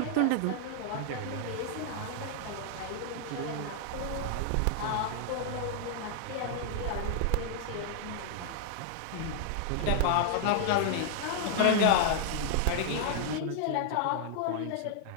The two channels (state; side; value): different; both; correlation 0.00